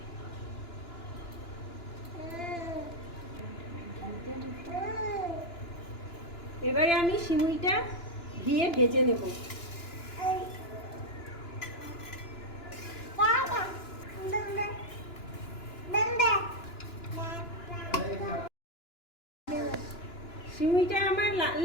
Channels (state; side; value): late; right; 2.9 ms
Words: এবারে আমি সিমুইটা দিয়ে ভেজে নেব। সিমুইটা আমার লাল